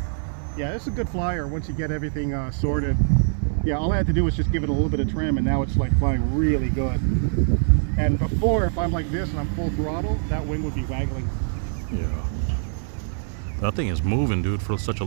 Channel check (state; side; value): silent; left; digital silence